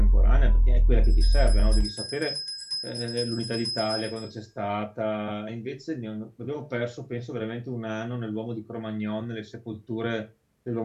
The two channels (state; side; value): identical; both; correlation 1.00